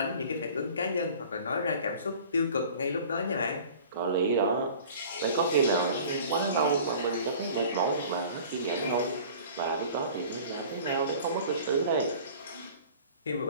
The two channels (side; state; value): both; inverted; correlation -0.45